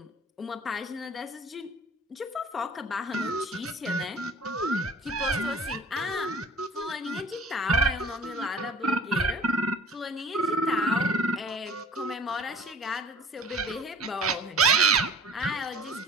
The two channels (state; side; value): normal; both; correlation 0.48